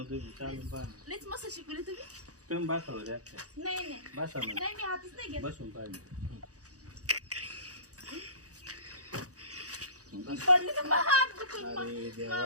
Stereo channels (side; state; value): left; late; 0.67 ms